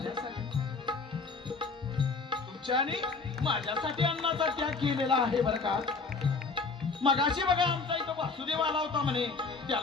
तुमच्या आणि माझ्यासाठी अन्नाचा त्याग केलेला आहे बरं का. मगाशी बघा आमचा इथं वासुदेव आला होता म्हणे,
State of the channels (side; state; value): right; quieter; 4.3 dB